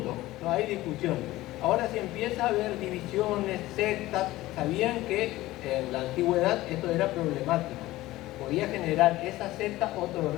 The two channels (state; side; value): quieter; right; 17.2 dB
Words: No hay discusión. Ahora si empieza a haber divisiones, sectas, sabían que en la antigüedad esto era problemático. Podía generar esa secta otro